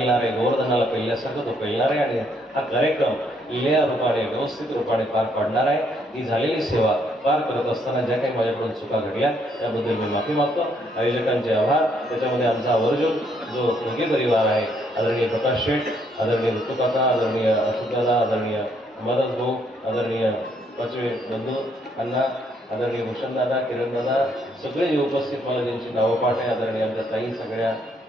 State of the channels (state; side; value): normal; both; correlation 0.70